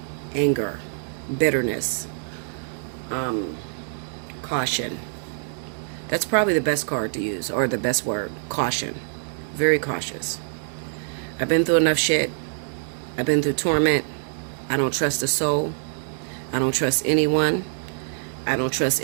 anger, bitterness, caution. That's probably the best card to use, or the best word, caution. Very cautious. I've been through enough shit. I've been through torment. I don't trust a soul. I don't trust anyone. I don't trust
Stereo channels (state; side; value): silent; left; digital silence